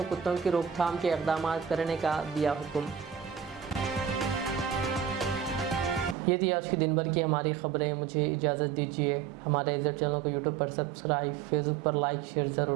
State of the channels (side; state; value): left; quieter; 8.1 dB